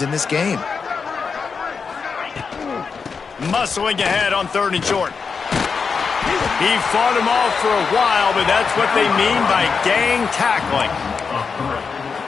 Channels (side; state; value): right; quieter; 5.4 dB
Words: in this game. Muscling ahead on third and short. He fought him off for a while, but that's what they mean by gang tackling.